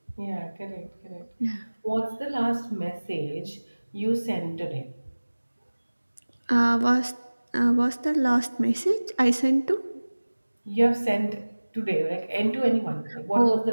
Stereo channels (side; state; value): both; inverted; correlation -1.00